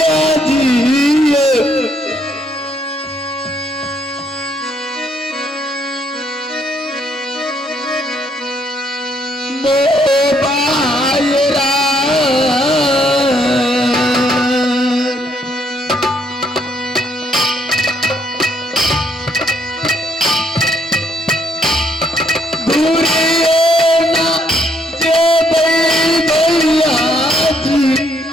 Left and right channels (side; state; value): both; normal; correlation 0.70